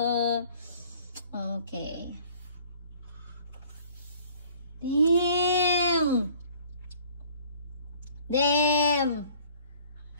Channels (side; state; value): both; inverted; correlation -0.54